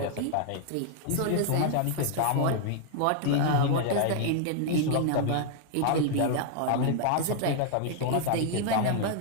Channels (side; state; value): both; different; correlation 0.00